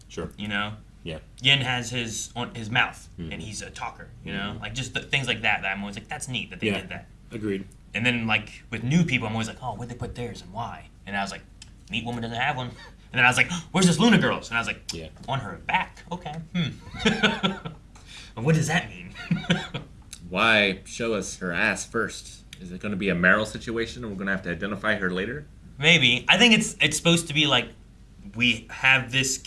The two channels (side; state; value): both; identical; correlation 1.00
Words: Sure. You know? Yeah. Yin has his on his mouth, and he's a talker. You know, like just things like that. That I'm always like, that's neat that they did that. Agreed. And then like with new people, I'm always like, oh, where'd they put theirs and why? And I was like, neat woman doesn't have one. And then I was like, where's this Luna girl's? And I was like, on her back. Okay. What does that mean? Why show us her ass first? Is it going to be a Meryl situation, and we're going to have to identify her later? Maybe. I think it's supposed to be like we have this